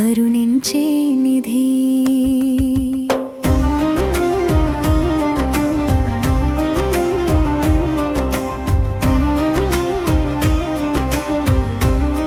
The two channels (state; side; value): identical; both; correlation 1.00